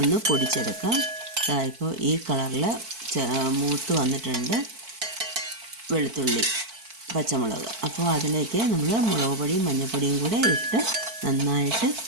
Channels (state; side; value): late; left; 4.5 ms